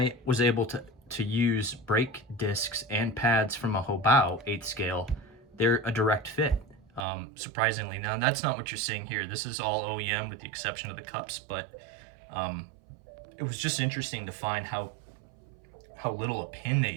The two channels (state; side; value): drops out; left; at 7.1 s